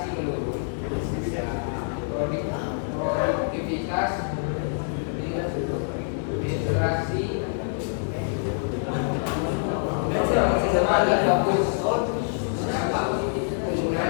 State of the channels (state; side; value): silent; right; digital silence